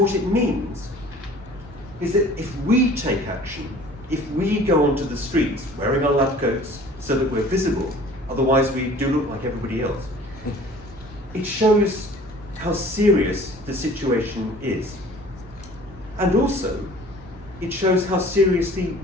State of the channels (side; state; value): both; normal; correlation 0.48